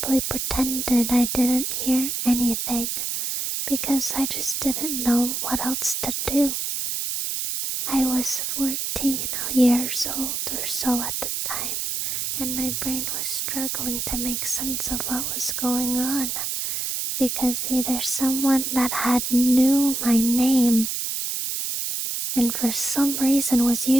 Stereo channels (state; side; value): noise; right; hiss, 2 dB below the sound